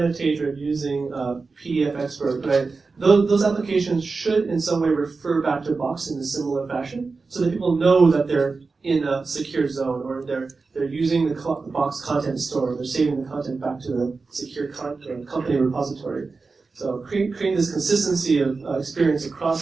or using PDF Expert, right, those applications should in some way refer back to Box in a similar fashion so that people know that they're in a secure zone, or they're using the Box content store, they're saving the content back to the secure company repository. So creating this consistency of experience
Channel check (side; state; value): left; quieter; 4.2 dB